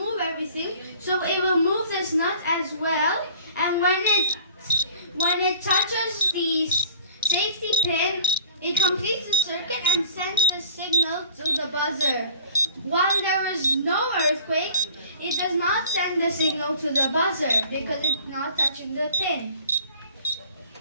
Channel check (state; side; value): inverted; both; correlation -0.50